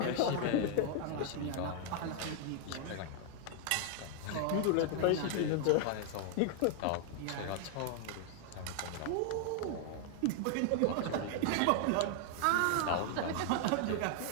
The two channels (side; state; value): both; different; correlation 0.00